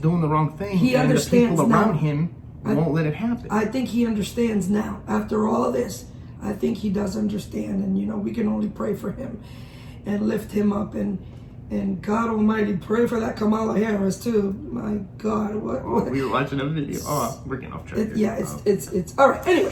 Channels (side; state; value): both; identical; correlation 1.00